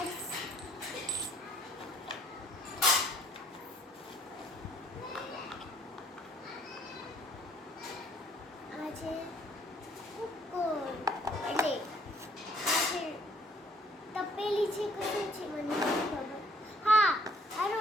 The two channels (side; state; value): both; normal; correlation 0.61